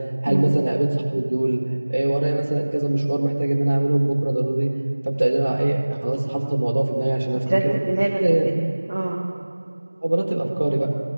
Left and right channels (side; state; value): both; inverted; correlation -1.00